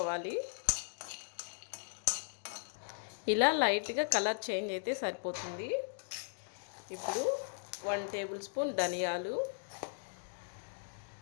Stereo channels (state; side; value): silent; right; digital silence